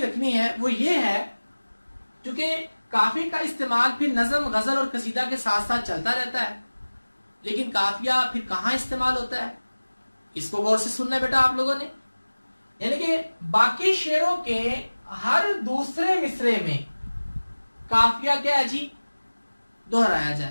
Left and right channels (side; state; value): both; inverted; correlation -1.00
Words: रखनी है वो ये है, क्योंकि काफिया का इस्तेमाल फिर नज़म, गजल और कसीदा के साथ साथ चलता रहता है, लेकिन काफिया फिर कहां इस्तेमाल होता है, इसको गौर से सुनना है बेटा आप लोगों ने। यानी कि बाकी शेरों के हर दूसरे मिसरे में काफिया क्या है जी दोहराया